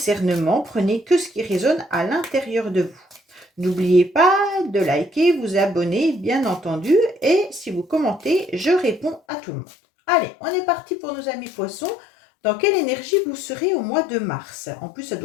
prenez que ce qui résonne à l'intérieur de vous. N'oubliez pas de liker, vous abonner, bien entendu, et si vous commentez, je réponds à tout le monde. Allez, on est parti pour nos amis poissons. Dans quelle énergie vous serez au mois de mars? En plus, ça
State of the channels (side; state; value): right; drops out; at 9.2 s